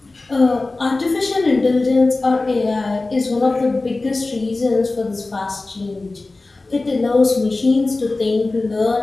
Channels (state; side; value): quieter; right; 3.3 dB